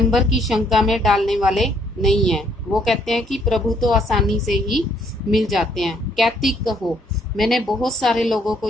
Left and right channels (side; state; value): both; normal; correlation 0.67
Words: की शंका में डालने वाले नहीं है। वो कहते हैं कि प्रभु तो आसानी से ही मिल जाते हैं। कैतिक कहो, मैंने बहुत सारे लोगों को